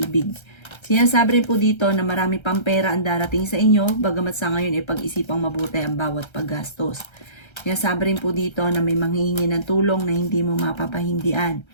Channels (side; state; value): right; late; 1.3 ms